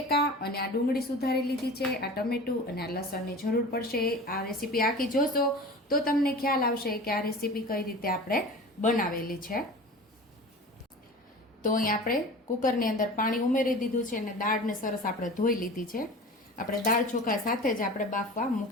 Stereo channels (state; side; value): normal; both; correlation 0.37